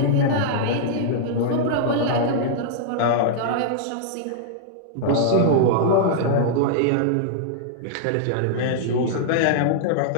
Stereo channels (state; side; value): different; both; correlation -0.01